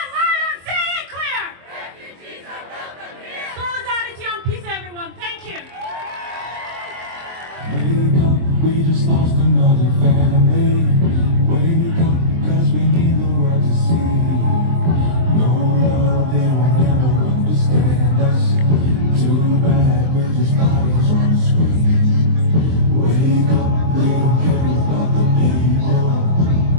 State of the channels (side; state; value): left; late; 23 ms